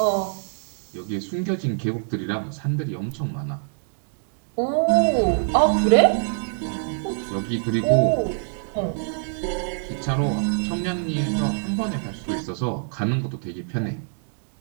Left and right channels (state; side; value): silent; left; 61 dB below the other